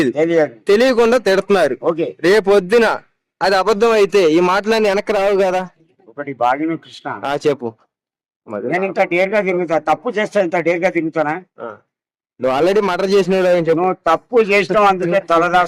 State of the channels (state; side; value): identical; both; correlation 1.00